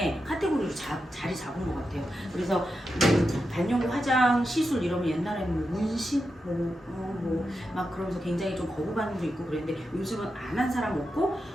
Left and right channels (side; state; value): both; normal; correlation 0.88